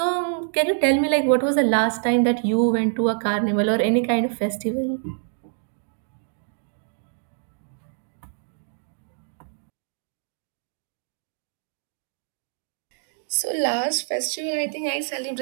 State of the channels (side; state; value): left; silent; digital silence